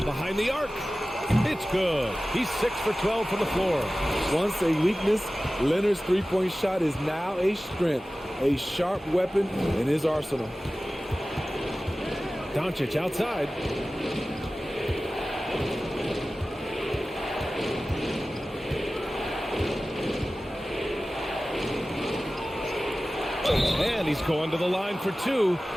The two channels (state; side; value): normal; both; correlation 0.96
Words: behind the arc. It's good. He's 6 for 12 from the floor. Once a weakness, Leonard's three-point shot is now a strength, a sharp weapon in his arsenal. Doncic outside. And he's going to the line for 2.